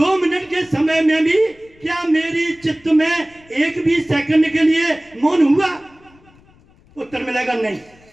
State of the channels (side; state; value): left; noise; rumble, 29 dB below the sound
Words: मिनट के समय में भी क्या मेरी चित्त में एक भी सेकंड के लिए मौन हुआ? उत्तर मिलेगा नहीं।